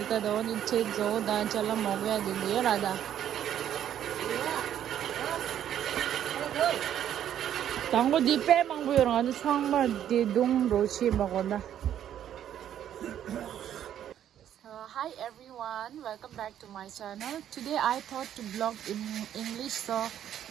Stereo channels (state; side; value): quieter; left; 10.5 dB